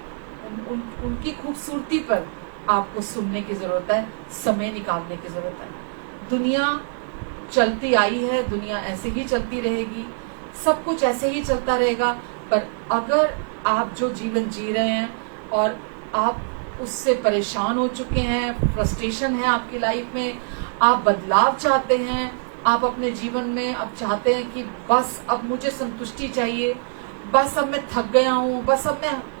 उनकी खूबसूरती पर आपको सुनने की जरूरत है, समय निकालने की जरूरत है। दुनिया चलती आई है, दुनिया ऐसे ही चलती रहेगी, सब कुछ ऐसे ही चलता रहेगा। पर अगर आप जो जीवन जी रहे हैं और आप उससे परेशान हो चुके हैं, फ्रस्ट्रेशन है आपकी लाइफ में, आप बदलाव चाहते हैं, आप अपने जीवन में अब चाहते हैं कि बस अब मुझे संतुष्टि चाहिए, बस अब मैं थक गया हूँ, बस अब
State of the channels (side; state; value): left; silent; digital silence